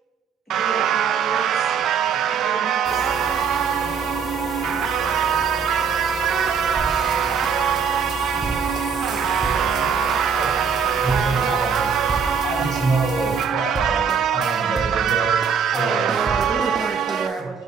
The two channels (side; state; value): left; quieter; 6.4 dB